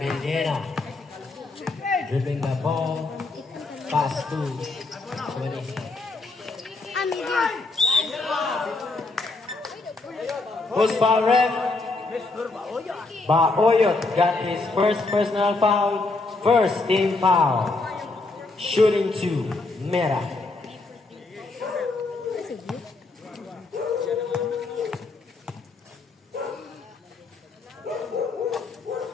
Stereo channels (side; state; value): right; quieter; 3.4 dB